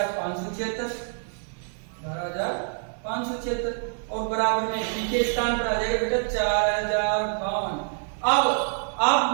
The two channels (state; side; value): silent; left; 61 dB below the other